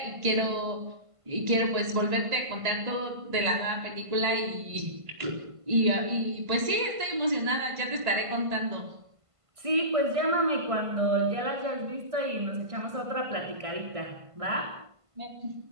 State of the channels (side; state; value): left; late; 1.5 ms